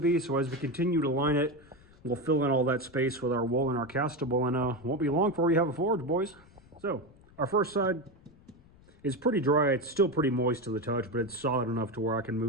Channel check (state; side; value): noise; left; rumble, 26 dB below the sound